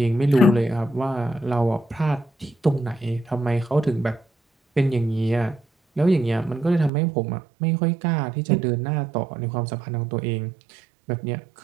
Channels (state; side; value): drops out; left; at 6.9 s